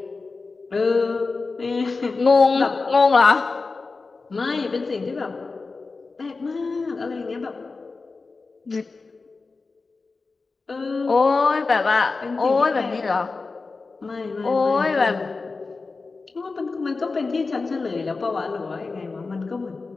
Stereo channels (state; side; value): quieter; right; 4.0 dB